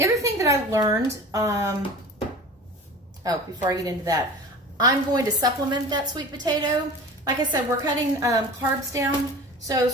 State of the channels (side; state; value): both; normal; correlation 0.37